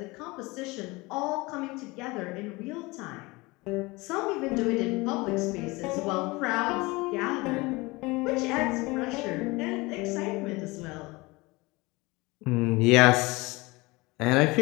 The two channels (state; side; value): quieter; right; 23.4 dB